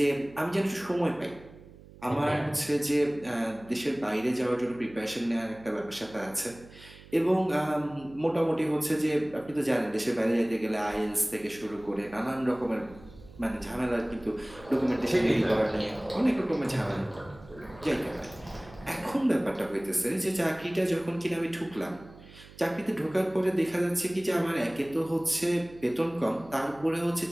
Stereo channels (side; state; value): right; noise; hum, 20 dB below the sound